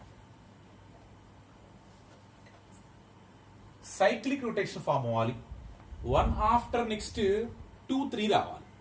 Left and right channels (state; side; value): identical; both; correlation 1.00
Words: cyclic rotation form అవ్వాలి. 1 after next 2 3 రావాలి.